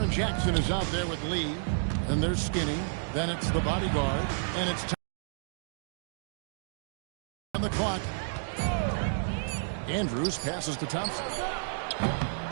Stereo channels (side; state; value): left; silent; digital silence